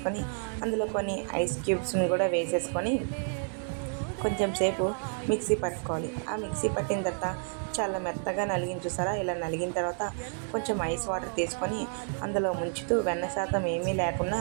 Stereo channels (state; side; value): silent; left; 58 dB below the other